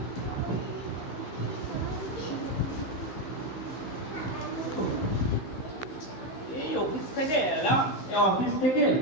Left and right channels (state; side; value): late; right; 15 ms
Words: এই অফিস থেকে এলাম, অফিস থেকে